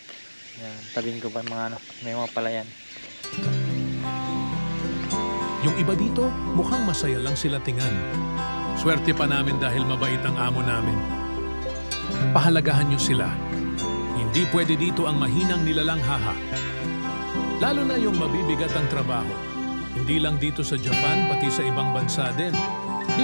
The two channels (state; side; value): inverted; both; correlation -1.00